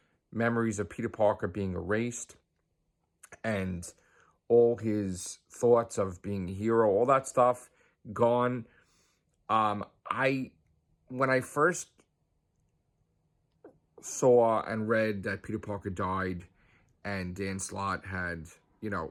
memories of Peter Parker being erased and all his thoughts of being a hero, all that stuff gone. When I first saw and read that Peter Parker died and Dan Slott had,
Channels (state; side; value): identical; both; correlation 1.00